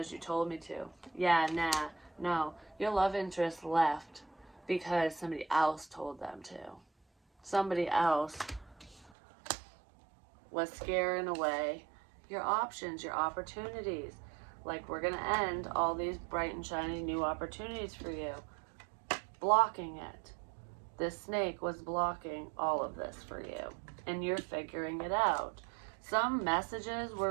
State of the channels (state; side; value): drops out; left; at 9.1 s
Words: you told me to. Yeah, nah, no. Your love interest left because somebody else told them to. Somebody else was scaring away your options, your opportunities. Like, we're going to end all these bright and shiny new opportunities for you. Blocking it. This snake was blocking all of this for you, and you're figuring it out. Some messages